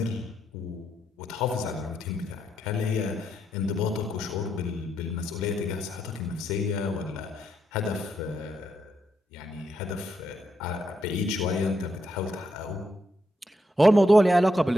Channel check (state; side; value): normal; both; correlation 0.80